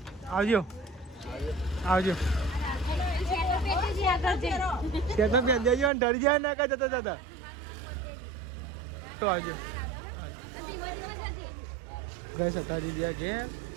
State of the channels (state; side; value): drops out; left; at 5.9 s